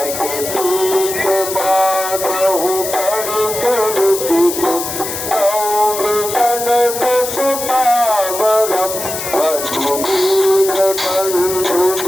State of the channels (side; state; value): left; noise; hiss, 6 dB below the sound